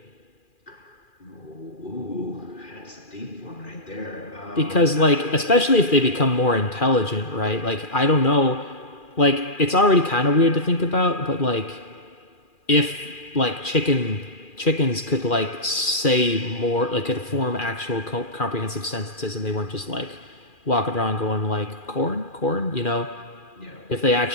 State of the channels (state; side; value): late; right; 2.4 ms